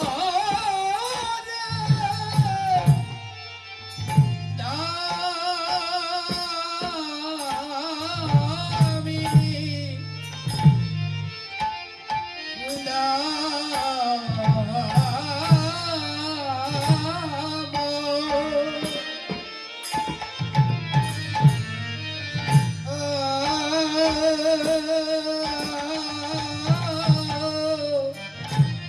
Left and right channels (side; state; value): both; identical; correlation 1.00